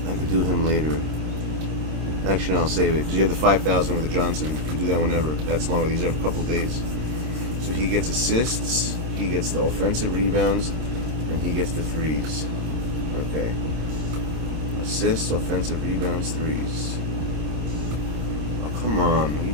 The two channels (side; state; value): left; late; 26 ms